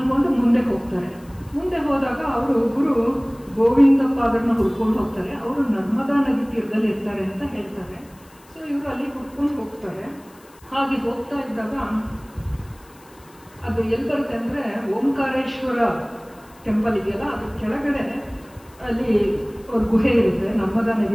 ಮುಂದೆ ಹೋಗ್ತಾರೆ. ಮುಂದೆ ಹೋದಾಗ ಅವರು ಗುರು ಗೋವಿಂದಪಾದರನ್ನ ಹುಡ್ಕೊಂಡು ಹೋಗ್ತಾರೆ. ಅವರು ನರ್ಮದಾ ನದಿ ತೀರದಲ್ಲಿ ಇರ್ತಾರೆ ಅಂತ ಹೇಳ್ತಾರೆ. ಸೊ ಇವರು ಅಲ್ಲಿ ಹುಡ್ಕೊಂಡು ಹೋಗ್ತಾರೆ. ಹಾಗೆ ಹೋಗ್ತಾ ಇದ್ದಾಗ ಅದು ಎಲ್ಲಿ ಬರುತ್ತೆ ಅಂದರೆ, ಓಂಕಾರೇಶ್ವರ ಟೆಂಪಲ್ ಇದೆಯಲ್ಲ, ಅದ್ರ ಕೆಳಗಡೆ ಅಲ್ಲಿ ಅವ್ರ ಗುಹೆ ಇರುತ್ತೆ ನರ್ಮದಾ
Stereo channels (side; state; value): left; noise; hiss, 27 dB below the sound